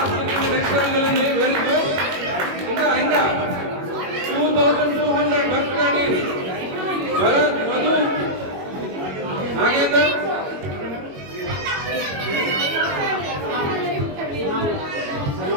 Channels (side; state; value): left; late; 21 ms